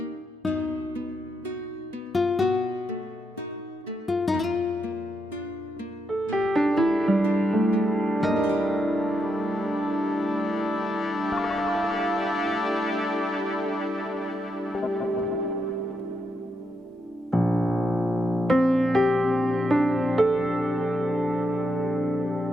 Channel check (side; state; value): both; normal; correlation 0.81